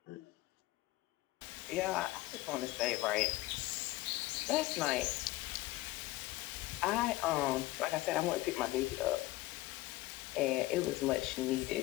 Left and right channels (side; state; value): right; quieter; 18.4 dB